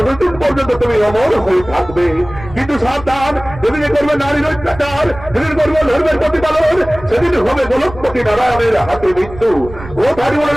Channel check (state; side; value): noise; right; rumble, 15 dB below the sound